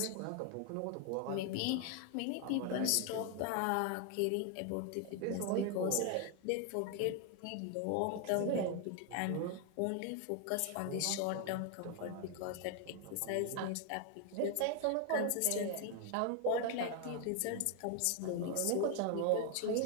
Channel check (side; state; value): both; different; correlation 0.01